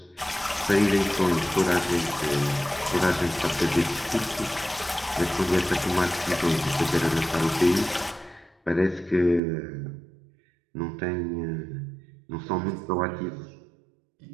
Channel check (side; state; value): left; drops out; at 9.4 s